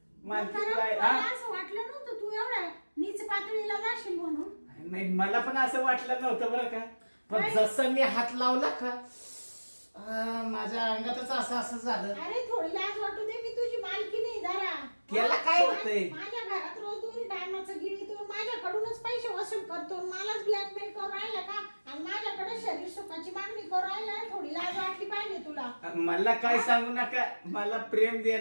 मालकीन कारण बाई मला हा असं वाटलं नव्हतं तू एवढ्या नीच पातळीला जाशील म्हणून. नाही मला पण असं वाटलं नव्हतं बरं का. पण काय? जसं मी हात लावला का माझ्या अंगातच असं झालं. अरे थोडी लाज वाटू दे मी तुझी मालकी नाही जरा. त्याला काय होतंय? माझ्या घरात रोज 2 टायमाचं गिळीतो माझ्याकडूनच पैसे वसूल करतो मलाच ब्लॅकमेल करून राहिला का? आणि माझ्याकडे शरीर सुखाची मागणी करू राहिला, थोडी लाज वाटली पाहिजे तुला. मला काय सांगू नका, मला प्रेम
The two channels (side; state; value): both; inverted; correlation -1.00